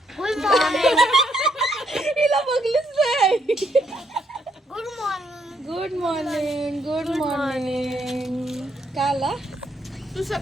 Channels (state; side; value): normal; both; correlation 0.74